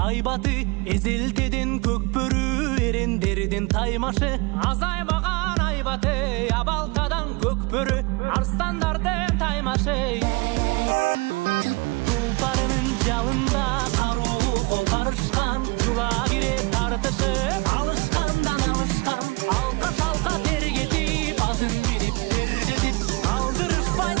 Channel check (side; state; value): left; quieter; 27.5 dB